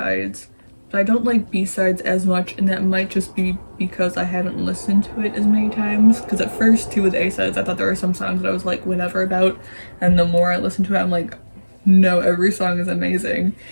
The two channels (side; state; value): both; inverted; correlation -1.00